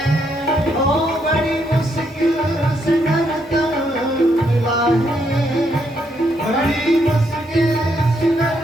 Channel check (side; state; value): both; normal; correlation 0.75